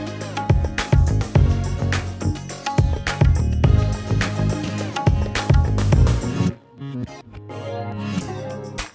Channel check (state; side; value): identical; both; correlation 1.00